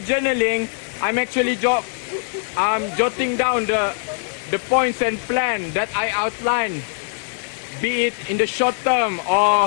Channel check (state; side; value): silent; right; 57 dB below the other